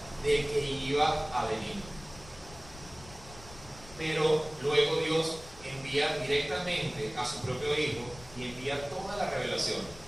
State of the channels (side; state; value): left; noise; rumble, 18 dB below the sound